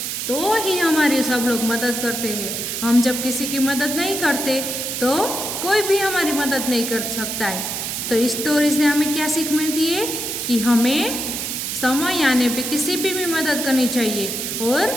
तो ही हमारे सब लोग मदद करते हैं। हम जब किसी की मदद नहीं करते तो कोई भी हमारी मदद नहीं कर सकता है। तो इस स्टोरी से हमें क्या सीख मिलती है कि हमें समय आने पे किसी भी मदद करनी चाहिए और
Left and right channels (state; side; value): noise; right; hiss, 3 dB below the sound